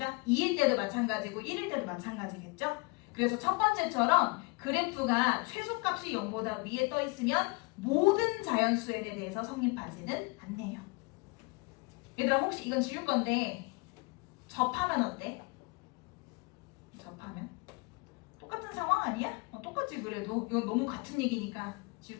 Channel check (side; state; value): right; quieter; 28.5 dB